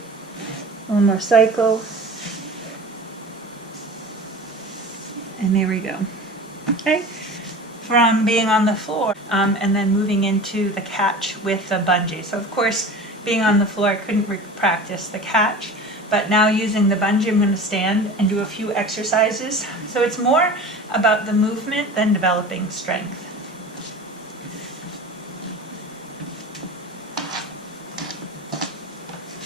One more cycle. And there we go. Okay. From being on the floor and then moving into the catch with the bungee. So of course, being on the floor, I couldn't practice the catch, but now using the bungee, I'm going to stand and do a few exercises. So it's more about the movement than developing strength.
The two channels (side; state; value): both; normal; correlation 0.36